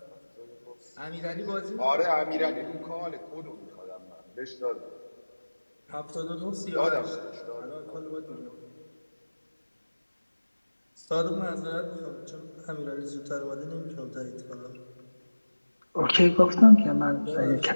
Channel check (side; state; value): both; inverted; correlation -1.00